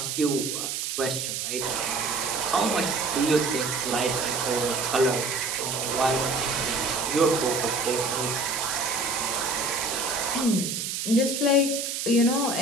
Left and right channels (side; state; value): right; noise; hiss, 3 dB below the sound